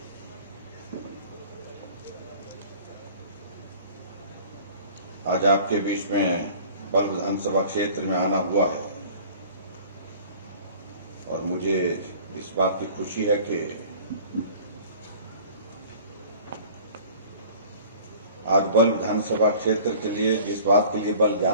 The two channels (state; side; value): inverted; both; correlation -0.46